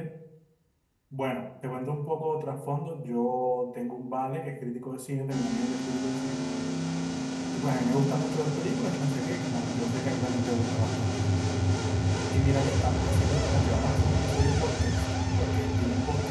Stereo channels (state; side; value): identical; both; correlation 1.00